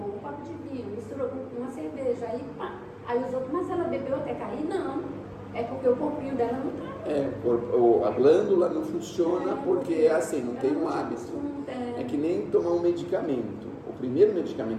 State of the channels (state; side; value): identical; both; correlation 1.00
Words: copo de vinho, misturou com uma cerveja, aí pá. Aí os outros, mas ela bebeu até cair? Não. É porque o corpinho dela não tá. A glândula não funciona porque é assim, não tem um hábito. É que nem tomar um medicamento. O primeiro